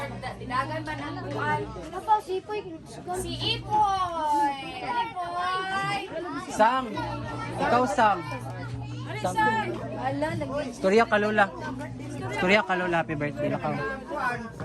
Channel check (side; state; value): both; identical; correlation 1.00